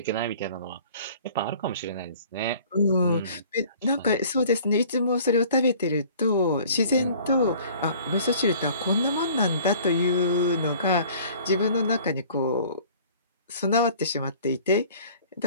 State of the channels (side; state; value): both; inverted; correlation -0.50